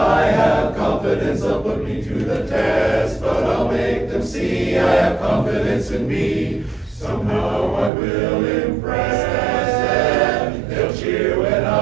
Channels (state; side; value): drops out; left; at 7.9 s